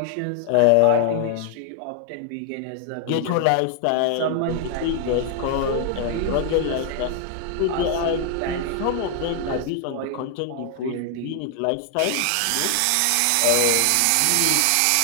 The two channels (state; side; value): different; both; correlation 0.00